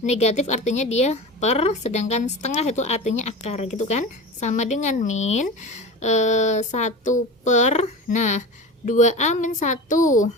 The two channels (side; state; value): both; normal; correlation 0.30